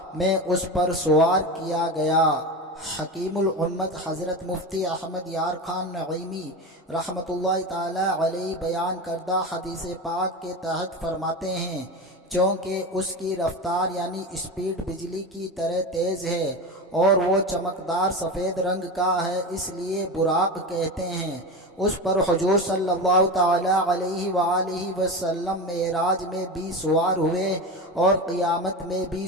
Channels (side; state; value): both; normal; correlation 0.24